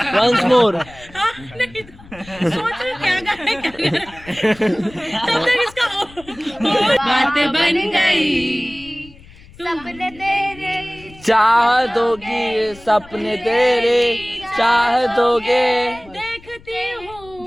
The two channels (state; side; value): noise; left; rumble, 22 dB below the sound